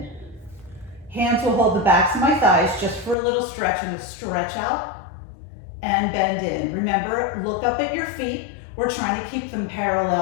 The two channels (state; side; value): drops out; right; at 3.2 s